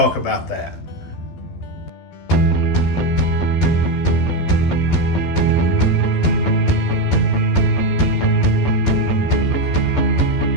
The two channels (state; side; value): late; right; 12 ms